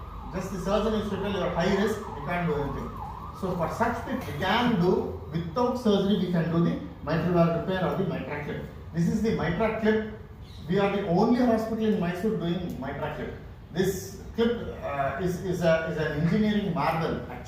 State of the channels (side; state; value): both; identical; correlation 1.00